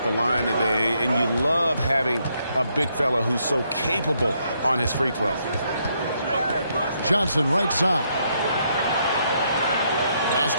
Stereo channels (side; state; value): both; inverted; correlation -0.75